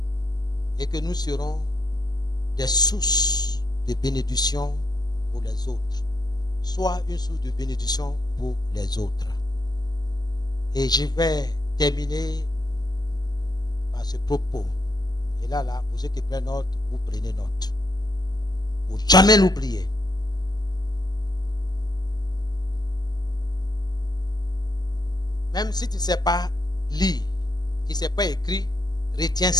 et que nous serons des sources de bénédiction pour les autres. Soit une source de bénédiction pour les autres. Et je vais terminer par ce propos. Et là, pour ceux qui prennent note, vous prenez note. Pour jamais l'oublier. Même si tu ne sais pas lire, tu ne sais pas écrire, retiens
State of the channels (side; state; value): right; late; 0.19 ms